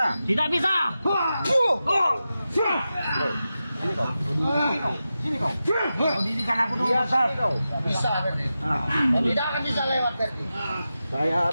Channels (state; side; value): inverted; both; correlation -0.92